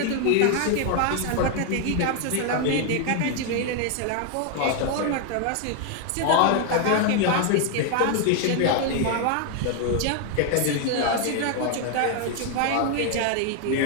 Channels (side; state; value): both; different; correlation 0.01